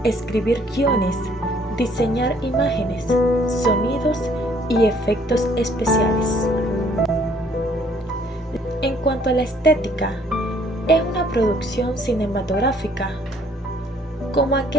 escribir guiones, diseñar imágenes, sonidos y efectos especiales. En cuanto a la estética, es una producción cinematográfica como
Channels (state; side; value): normal; both; correlation 0.61